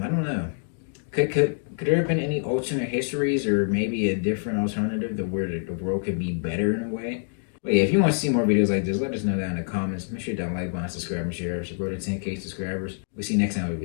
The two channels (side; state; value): right; silent; digital silence